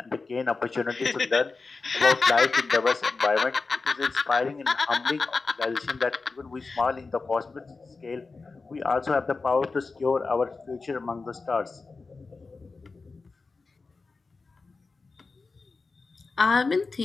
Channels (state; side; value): quieter; right; 4.0 dB